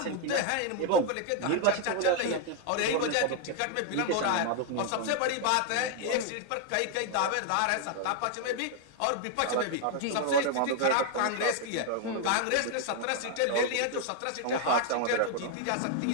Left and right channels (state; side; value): different; both; correlation 0.00